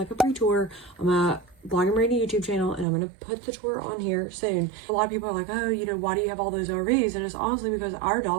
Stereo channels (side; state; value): left; drops out; at 2.9 s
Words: a pre-tour on my Blog and Brandi YouTube channel, and I'm going to put the tour on here soon. A lot of people are like, oh, you know, why do you have all those RVs? And it's honestly because our